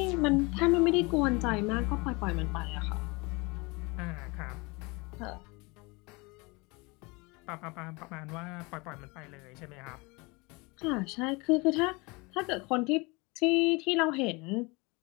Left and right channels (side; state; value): right; quieter; 26.4 dB